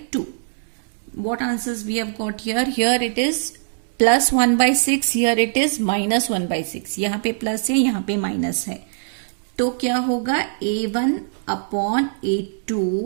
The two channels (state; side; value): silent; left; digital silence